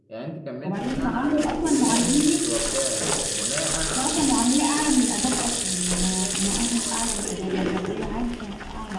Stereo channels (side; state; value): both; identical; correlation 1.00